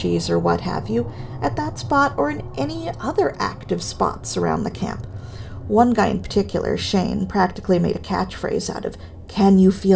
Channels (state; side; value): identical; both; correlation 1.00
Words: or what have you at that spot or in any other active spots around the camp. One guy in particular, Shane, practically made a catchphrase out of, "Can you